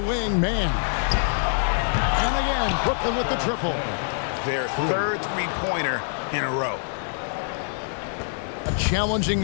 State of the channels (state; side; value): silent; right; digital silence